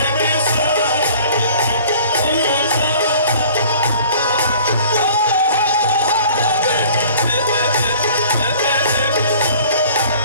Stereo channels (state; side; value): inverted; both; correlation -0.49